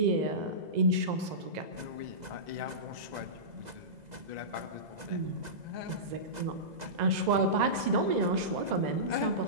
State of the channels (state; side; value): late; left; 2.0 ms